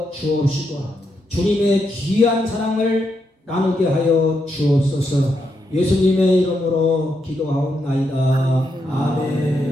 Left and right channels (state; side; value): normal; both; correlation 0.81